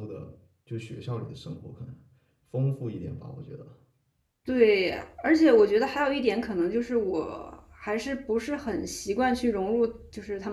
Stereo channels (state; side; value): identical; both; correlation 1.00